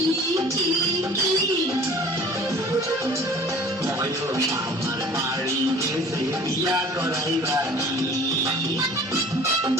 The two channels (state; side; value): normal; both; correlation 0.47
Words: বয়স আমার বাড়ি গেছে বিয়া করাইবানি